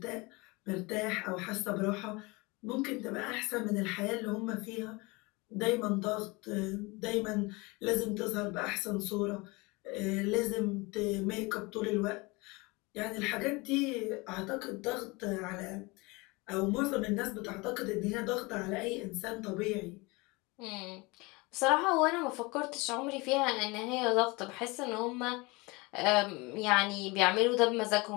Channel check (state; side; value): quieter; right; 25.3 dB